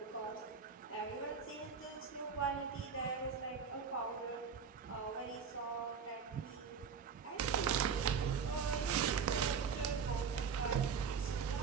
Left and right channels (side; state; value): left; quieter; 6.2 dB